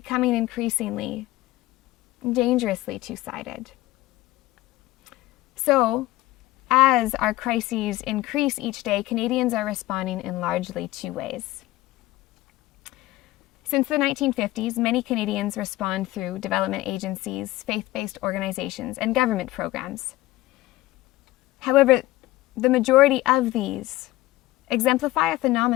increasingly, dangerously two-sided. So, as our crises increase each day, Canadians are responding in largely two ways. Since the 1950s, many Canadians respond through development agencies, faith-based organizations, and government programs. However, the majority of these exemplify a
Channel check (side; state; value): right; quieter; 17.5 dB